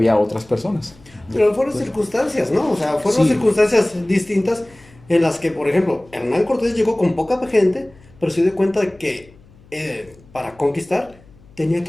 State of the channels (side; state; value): left; noise; hum, 26 dB below the sound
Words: otras personas. Pero fueron circunstancias, ¿no? O sea, fueron Sí. circunstancias distintas en las que, por ejemplo, Hernán Cortés llegó con poca gente, pero se dio cuenta de que para conquistar tenía